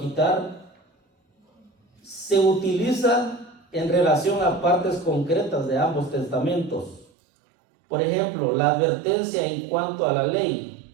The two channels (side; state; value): left; drops out; at 7.1 s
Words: se utiliza en relación a partes concretas de ambos testamentos. Por ejemplo, la advertencia en cuanto a la ley.